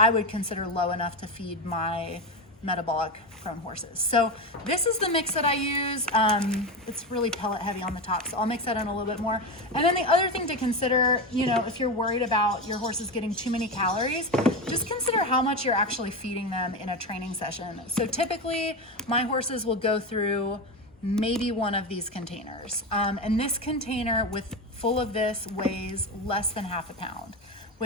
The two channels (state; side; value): normal; both; correlation 0.18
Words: would consider low enough to feed my metabolic prone horses. So this is the mix that I use. It's really pellet heavy on the top, so I'll mix that in a little bit more. And then the other thing to consider, you know, if you're worried about your horses getting too many calories, just consider how much you're actually feeding them in a training session. So typically my horses will go through maybe one of these containers. And this container full of this weighs less than half a pound,